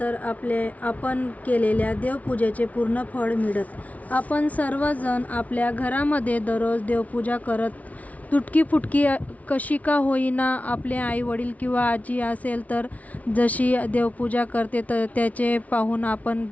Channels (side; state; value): right; late; 0.070 ms